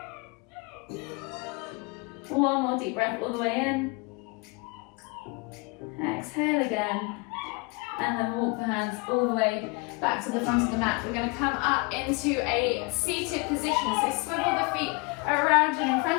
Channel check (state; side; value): quieter; right; 28.4 dB